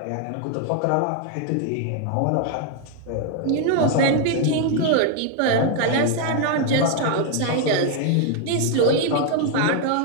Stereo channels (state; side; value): different; both; correlation 0.01